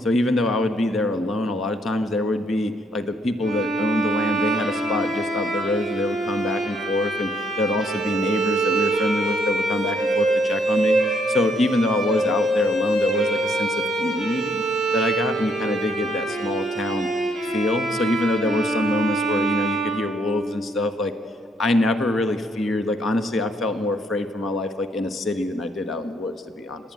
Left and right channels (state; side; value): normal; both; correlation 0.71